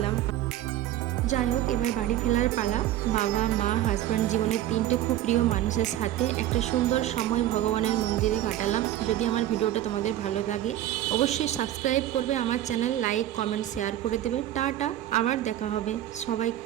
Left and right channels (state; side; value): quieter; left; 13.1 dB